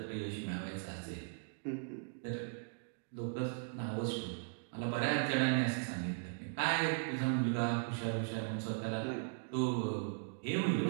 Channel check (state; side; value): silent; left; digital silence